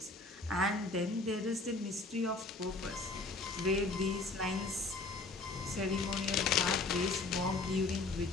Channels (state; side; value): quieter; right; 3.5 dB